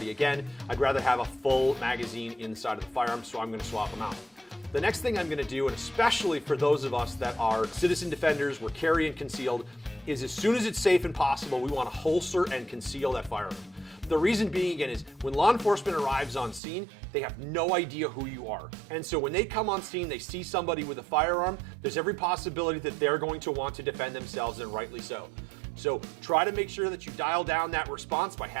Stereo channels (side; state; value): left; drops out; at 16.6 s